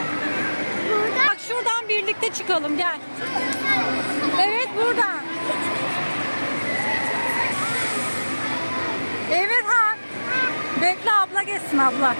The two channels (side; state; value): both; inverted; correlation -1.00